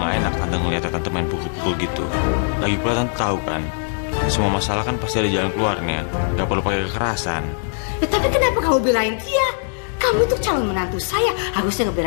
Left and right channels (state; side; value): silent; right; 60 dB below the other